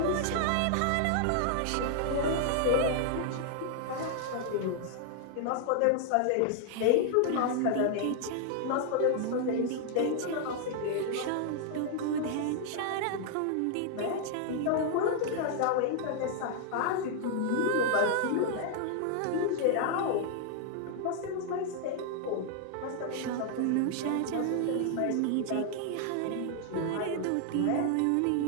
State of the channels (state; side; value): different; both; correlation 0.00